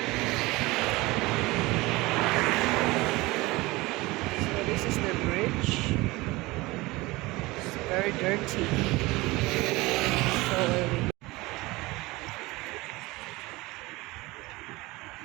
So this is the bridge. It's very dirty. So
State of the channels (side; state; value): left; quieter; 21.5 dB